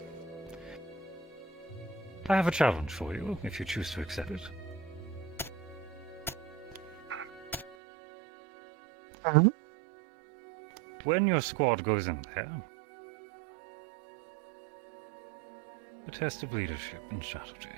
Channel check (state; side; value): drops out; left; at 7.8 s